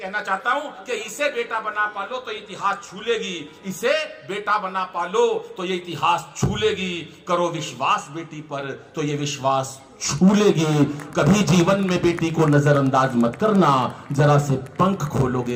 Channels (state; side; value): identical; both; correlation 1.00